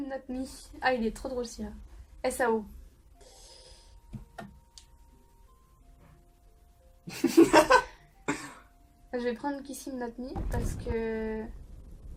Not Me. Ah, il est trop drôle celui-là. SAO. Je vais prendre Kiss Him Not Me parce que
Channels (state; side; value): identical; both; correlation 1.00